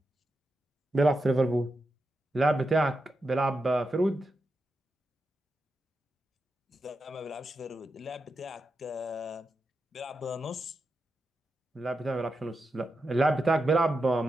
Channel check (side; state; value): both; normal; correlation 0.88